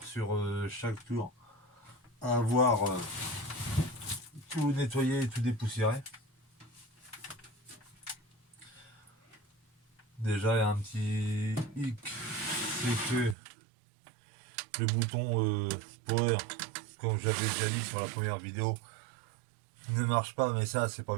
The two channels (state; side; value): drops out; left; at 13.4 s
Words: sur chaque tour à avoir tout nettoyé et tout dépoussiéré. Déjà, il y a un petit hic, c'est que le bouton power, comme j'avais déjà dit sur la première vidéo, ne marche pas, mais ça c'est pas